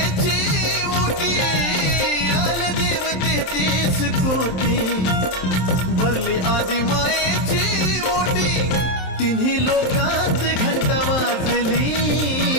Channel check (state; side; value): late; right; 27 ms